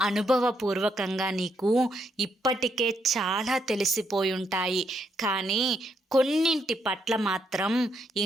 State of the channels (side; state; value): both; normal; correlation 0.76